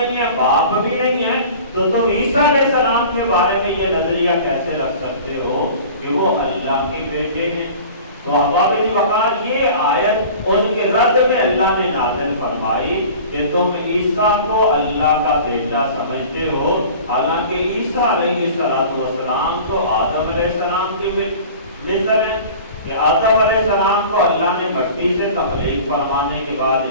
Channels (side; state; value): both; inverted; correlation -0.41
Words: ہے، باپ بھی نہیں ہے، تو تم عیسیٰ علیہ السلام کے بارے میں یہ نظریہ کیسے رکھ سکتے ہو کہ وہ اللہ کے بیٹے ہیں؟ تو احباب وقار یہ آیت ان کے رد میں اللہ نے نازل فرمائی کہ تم عیسیٰ کو اللہ کا بیٹا سمجھتے ہو، حالانکہ عیسیٰ علیہ السلام تو آدم علیہ السلام کی مثل ہے کہ آدم علیہ السلام کو اللہ نے مٹی سے تخلیق فرمانے کے بعد